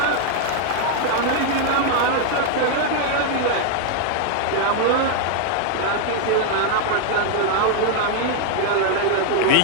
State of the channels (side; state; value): both; different; correlation 0.00